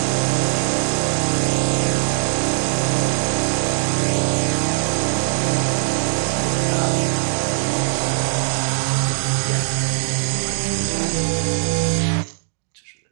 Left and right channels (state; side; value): silent; left; digital silence